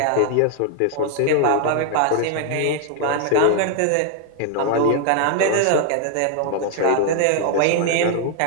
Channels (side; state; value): both; different; correlation 0.00